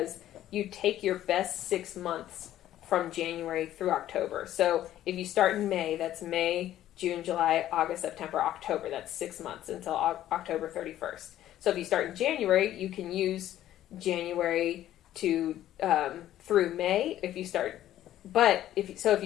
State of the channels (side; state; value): right; quieter; 12.8 dB